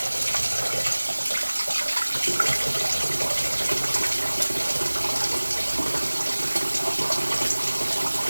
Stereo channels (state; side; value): inverted; both; correlation -1.00